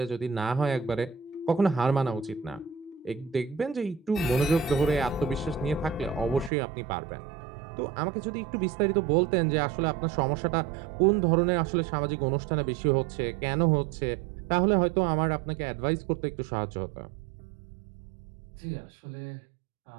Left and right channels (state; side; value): drops out; left; at 6.5 s